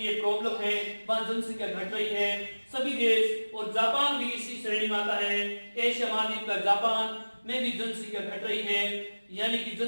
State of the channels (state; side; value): inverted; both; correlation -1.00